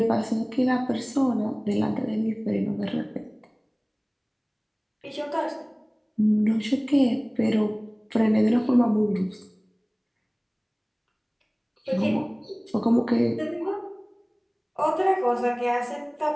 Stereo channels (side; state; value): both; identical; correlation 1.00